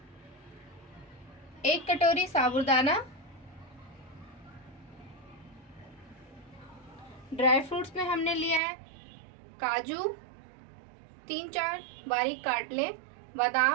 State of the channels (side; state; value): left; drops out; at 8.6 s